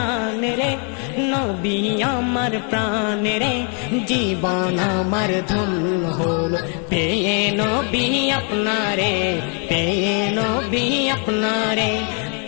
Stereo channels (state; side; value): quieter; right; 39.8 dB